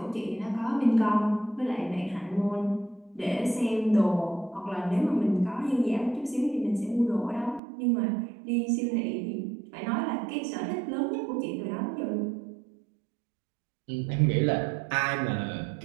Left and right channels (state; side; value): drops out; left; at 7.6 s